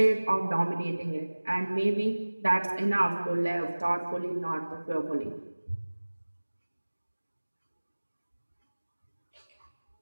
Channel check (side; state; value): both; inverted; correlation -1.00